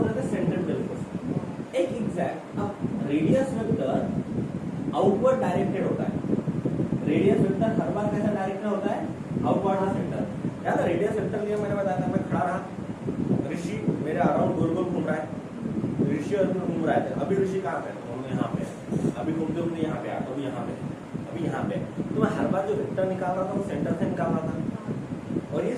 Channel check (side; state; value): both; identical; correlation 1.00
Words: रहे थे सेंट्रीपिटल फोर्स। एक एग्जैक्ट, अब रेडियस वेक्टर आउटवर्ड डायरेक्टेड होता है, रेडियस वेक्टर हर बार कैसा डायरेक्टेड होता है, आउटवर्ड द सेंटर। याद है रेडियस वेक्टर के मैंने बताया था, मैं खड़ा रहा, ऋषि मेरे अराउंड गोल गोल घूम रहा है, ऋषि और घूम रहा है, अभी ऋषि कहाँ पे, तो हम यहाँ पे, अभी घूमते घूमते यहाँ पे, अभी यहाँ पे, अभी यहाँ पे, तो मैं हर बार जो वेक्टर निकाल रहा था वो सेंटर से निकाल रहा था, और ये